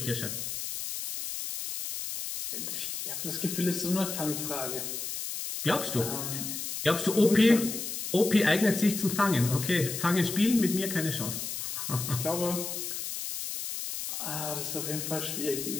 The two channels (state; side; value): noise; left; hiss, 5 dB below the sound